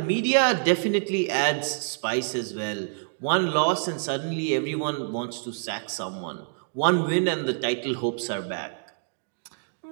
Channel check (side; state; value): left; silent; digital silence